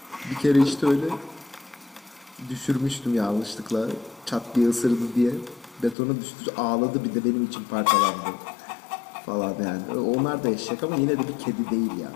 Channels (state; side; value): drops out; right; at 6.0 s